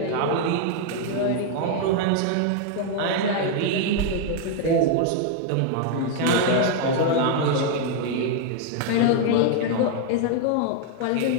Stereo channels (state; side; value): different; both; correlation 0.00